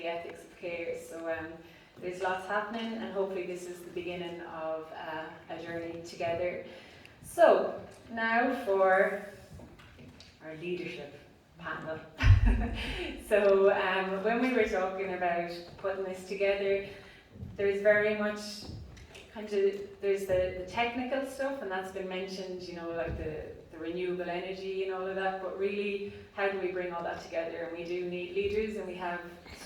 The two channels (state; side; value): identical; both; correlation 1.00